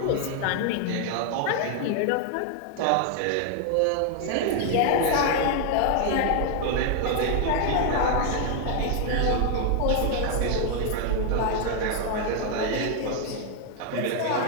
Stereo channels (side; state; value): both; different; correlation 0.00